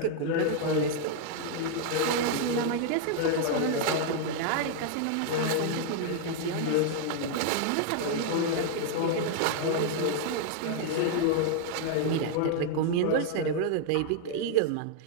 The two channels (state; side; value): different; both; correlation 0.00